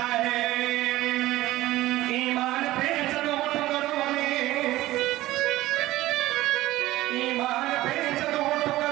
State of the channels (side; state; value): left; quieter; 16.6 dB